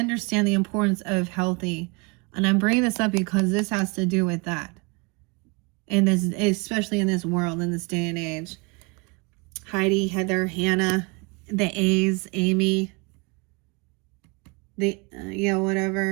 the importance of healthy. And I'm bringing this up because this has to do with that. In this, especially in this world, in this day and age. Heidi, Heather, Hannah, the A's, Amy, the, yeah,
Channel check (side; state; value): left; quieter; 29.5 dB